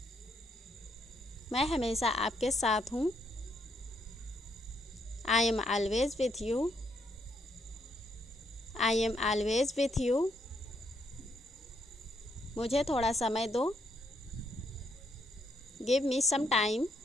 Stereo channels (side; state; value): both; normal; correlation 0.75